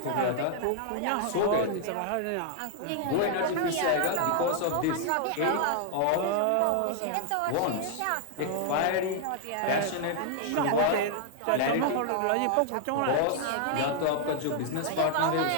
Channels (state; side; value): different; both; correlation -0.01